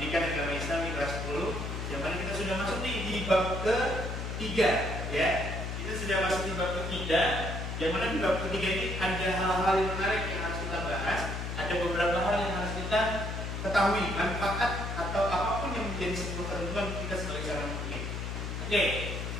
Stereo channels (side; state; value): left; noise; hum, 4 dB below the sound